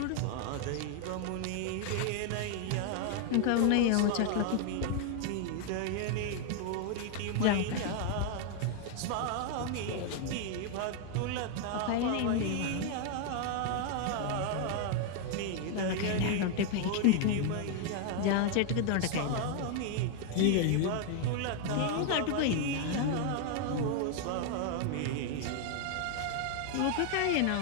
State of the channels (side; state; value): both; different; correlation 0.00